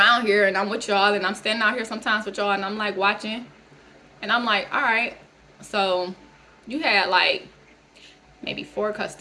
here, and I'm with y'all, and I'm standing out here sometimes with y'all, and I'm like watching, and I'm like, all right, so you had like maybe 4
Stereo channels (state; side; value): identical; both; correlation 1.00